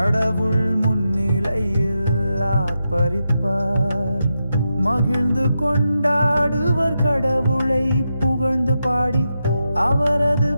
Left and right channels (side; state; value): both; inverted; correlation -0.88